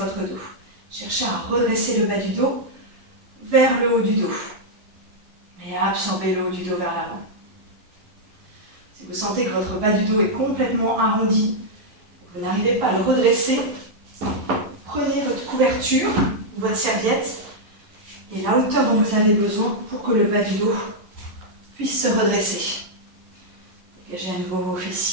dos. Cherchez à redresser le bas du dos vers le haut du dos et à absorber le haut du dos vers l'avant. Si vous sentez que votre bas du dos est complètement arrondi, vous n'arrivez pas à le redresser, prenez votre couverture, votre serviette et la hauteur dont vous avez besoin pour que le bas du dos puisse se redresser. Dégagez à nouveau vos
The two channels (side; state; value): left; late; 11 ms